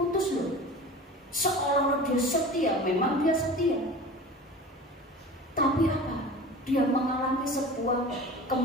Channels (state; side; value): normal; both; correlation 0.37